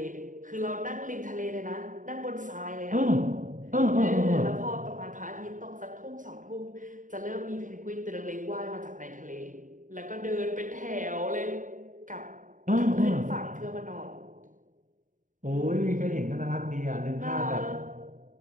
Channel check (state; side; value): late; left; 0.38 ms